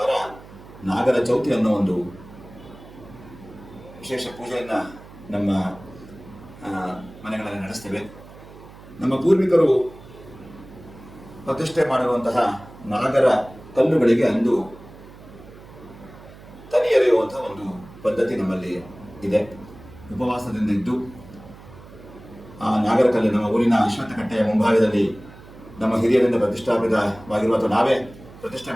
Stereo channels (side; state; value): right; noise; hum, 19 dB below the sound